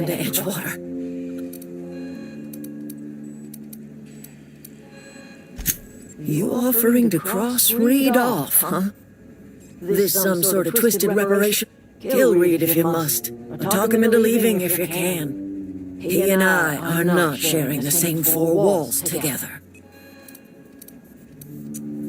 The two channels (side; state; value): both; identical; correlation 1.00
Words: to Edgewater. You offering to cross Reed off, huh? This some sort of twisted reparation? Kill Reed if you must, or talk him into leaving if you can. He and I are not sharing the same four walls together.